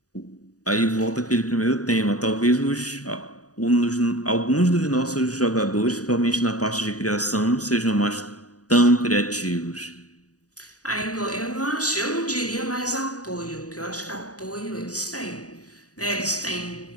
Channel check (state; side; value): late; right; 0.67 ms